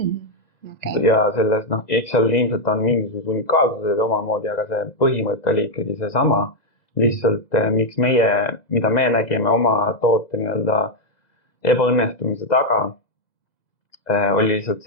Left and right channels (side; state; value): right; late; 2.0 ms